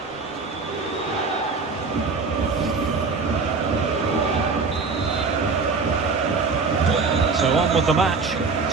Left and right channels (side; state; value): left; quieter; 4.5 dB